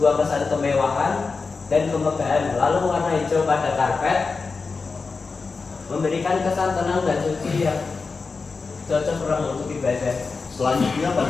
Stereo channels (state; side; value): quieter; right; 4.5 dB